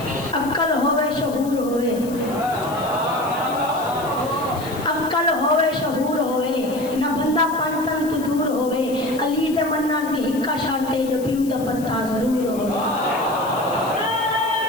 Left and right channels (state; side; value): noise; left; hiss, 17 dB below the sound